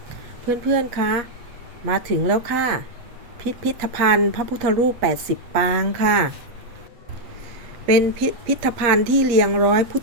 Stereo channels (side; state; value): left; late; 8.2 ms